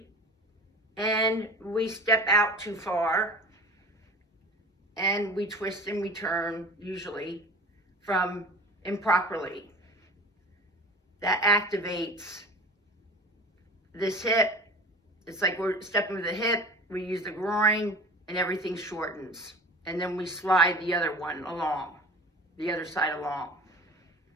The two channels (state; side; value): normal; both; correlation 0.38